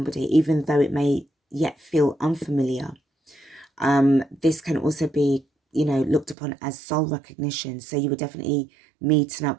even though it may yet feel unfamiliar. This can also be, you know, looked upon as soul recognition. So you were definitely meeting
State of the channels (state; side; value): drops out; left; at 6.4 s